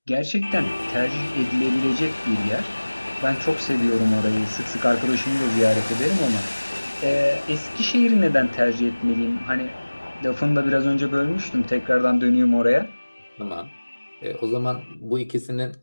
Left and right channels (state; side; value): inverted; both; correlation -1.00